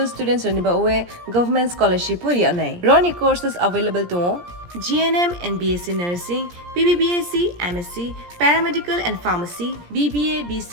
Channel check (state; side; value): late; left; 17 ms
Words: students ni ba oe government scholarship puri anai. Roni courses available to GNM and BSc Nursing, BBBSc, MSc, Paramedical and Pharmacy, BBA,